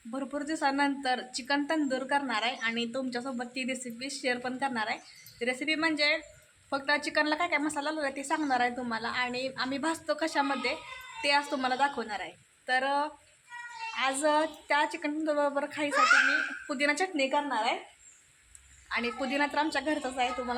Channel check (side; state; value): both; identical; correlation 1.00